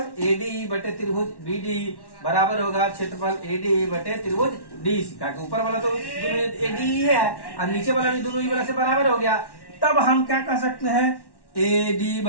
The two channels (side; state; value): right; late; 1.1 ms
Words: एडी बटे त्रिभुज बीडी बराबर होगा क्षेत्रफल एडी बटे त्रिभुज डीसी का। ऊपर वाला तो दोनों एडी है और नीचे वाला भी दोनों ही वाला से बराबर हो गया। तब हम क्या कर सकते हैं, एडी